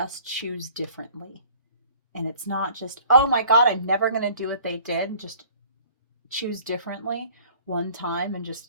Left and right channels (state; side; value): inverted; both; correlation -0.53